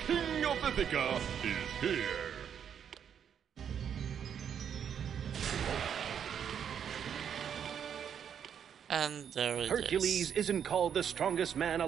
King of Ithaca, is here. And there it Hercules is. isn't called the strongest man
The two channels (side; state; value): left; quieter; 8.3 dB